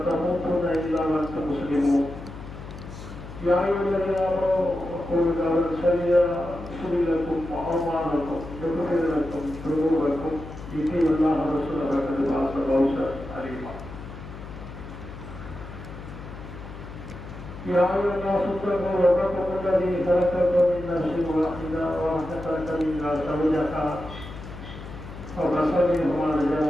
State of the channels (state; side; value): noise; left; hum, 12 dB below the sound